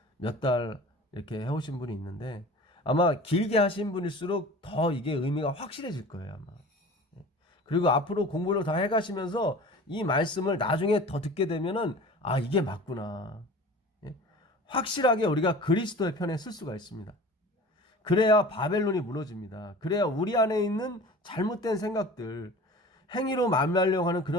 몇 달 이렇게 해오신 분이 있는데 아마 길게 하신 분일수록 더 이게 의미가 확실해질 거예요, 아마. 그리고 앞으로 공부를 더 해가시면서 이 말씀을 나중에 더 듣게 되면은 이게 맞구나. 확실하게 우리가 그리스도의 편에 쓸 수가 있습니다. 그래야 바벨론이 무너집니다. 그래야 우리 안에 있는 잘못된 생각들, 행위로 만나려고 하는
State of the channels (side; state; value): both; normal; correlation 0.40